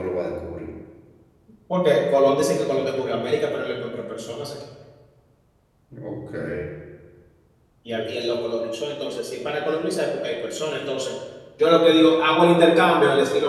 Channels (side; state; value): both; identical; correlation 1.00